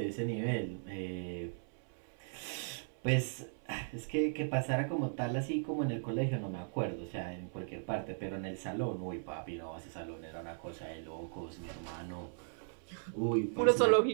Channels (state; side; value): silent; left; 53 dB below the other